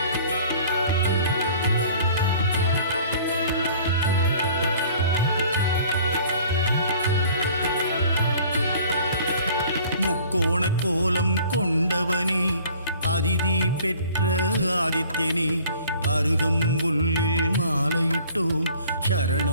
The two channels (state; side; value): inverted; both; correlation -0.51